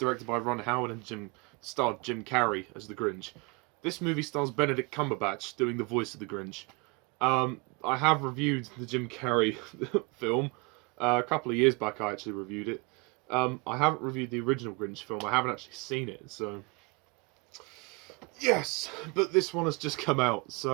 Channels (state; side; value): quieter; left; 28.9 dB